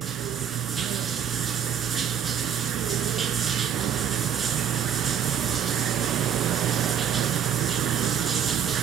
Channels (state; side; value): quieter; left; 8.6 dB